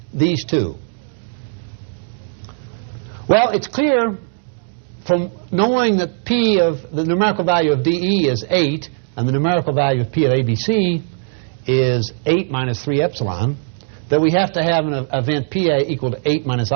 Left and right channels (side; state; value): left; silent; digital silence